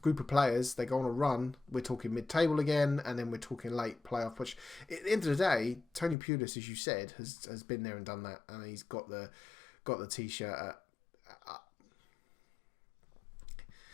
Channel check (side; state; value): right; drops out; at 6.2 s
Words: group of players, they go on a run. We're talking mid-table again, and then we're talking late playoff push. At the end of the day, Tony Pulis, as you said, has been there and done that, and he's got the t-shirt. No, he hasn't got the t-shirt. He's got the baseball cap.